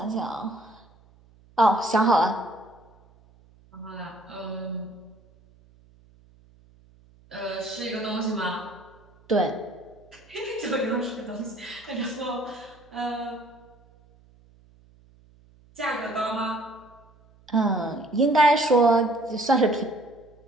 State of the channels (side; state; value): right; noise; hum, 28 dB below the sound